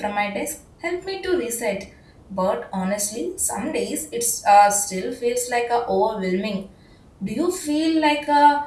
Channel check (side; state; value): both; identical; correlation 1.00